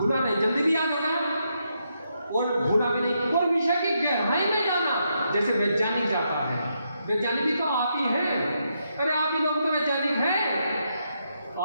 नहीं, जल्दी भी याद होगा और भूला भी नहीं, और विषय की गहराई में जाना। जैसे वैज्ञानिक जाता है, वैज्ञानिक भी तो आप ही हैं। अरे आप ही लोग तो वैज्ञानिक हैं,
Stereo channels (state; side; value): inverted; both; correlation -0.80